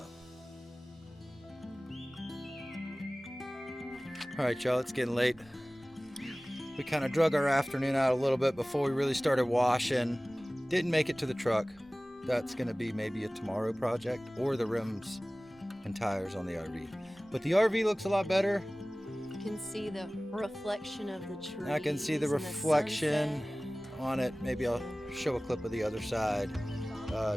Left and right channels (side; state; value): both; normal; correlation 0.98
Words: All right, y'all, it's getting late. We kind of drug our afternoon out a little bit before we really started washing. Didn't make it to the truck. That's gonna be maybe a tomorrow project, or the rims and tires on the RV. But the RV looks a lot better. You can see the reflection of the trees. I can see the reflection on it. Maybe I'll show a clip of the other side,